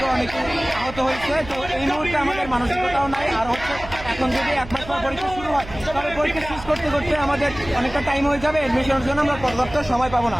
অনেকে আহত হয়েছে। তো এই মুহূর্তে আমাদের মানসিকতাও নাই। আর হচ্ছে এখন যদি 1 মাস পর পরীক্ষা শুরু হয় তবে পরীক্ষা শেষ করতে করতে আমাদের অনেকটা টাইম হয়ে যাবে, এডমিশনের জন্য আমরা পর্যাপ্ত সময় পাবো না।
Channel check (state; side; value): noise; right; hum, 14 dB below the sound